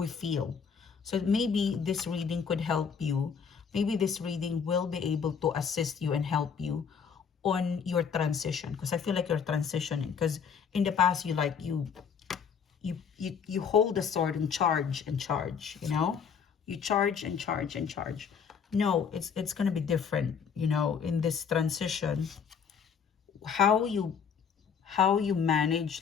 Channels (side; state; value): right; quieter; 6.7 dB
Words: feel. So maybe this reading could help you. Maybe this reading will be able to assist you and help you on your transition, because I feel like you're transitioning, because in the past you hold the sword and charge and charge, you charge and charge and charge. No, it's gonna be different, in this transition. How you